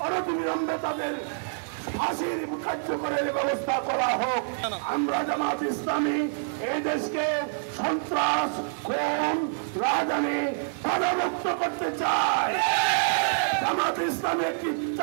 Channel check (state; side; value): silent; left; digital silence